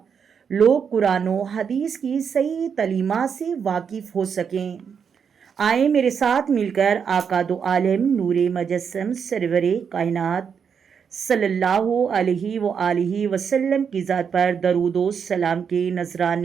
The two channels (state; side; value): quieter; left; 6.9 dB